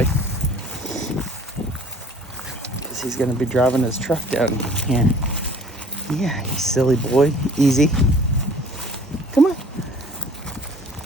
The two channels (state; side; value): normal; both; correlation 0.52